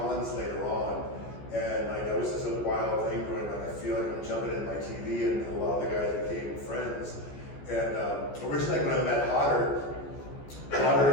later on. And like that was just a wild thing going on. I feel like I'm jumping in my TV, and a lot of the guys became friends. And originally when I met Hodder,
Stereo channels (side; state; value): right; late; 14 ms